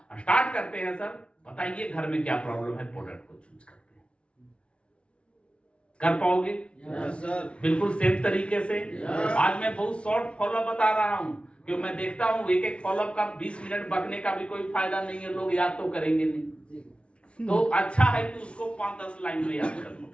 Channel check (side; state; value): right; late; 0.059 ms